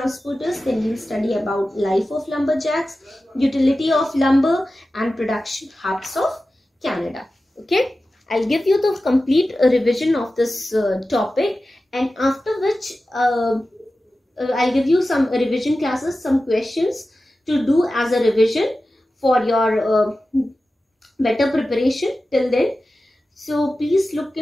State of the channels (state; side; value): normal; both; correlation 0.94